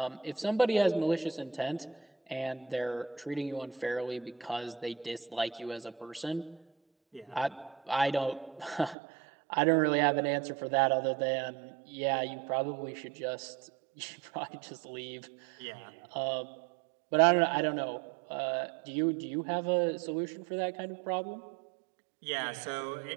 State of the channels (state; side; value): drops out; left; at 9.0 s